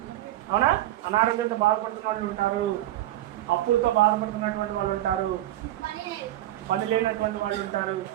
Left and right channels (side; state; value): left; quieter; 14.4 dB